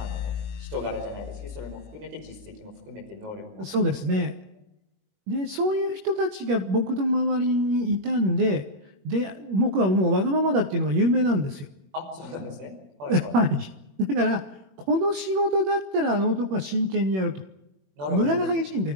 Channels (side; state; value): left; late; 21 ms